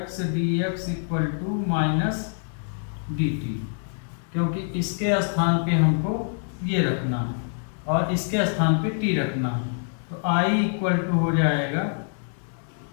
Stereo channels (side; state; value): right; silent; digital silence